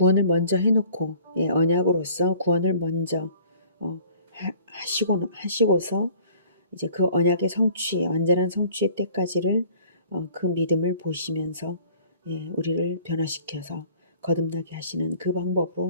먼저 해놓고 언약으로서 구원을 먼저 하시고서 이제 그 언약의 성취, 완전한 성취의 때까지를 그 믿음을 보시면서 우리를 변화시켜서 거듭나게 하시는 그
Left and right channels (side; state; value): both; inverted; correlation -0.52